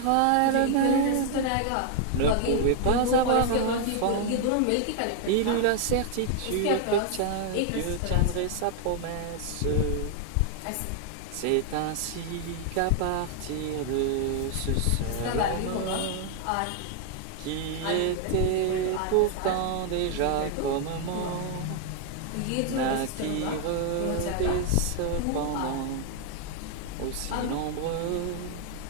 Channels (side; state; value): both; different; correlation 0.00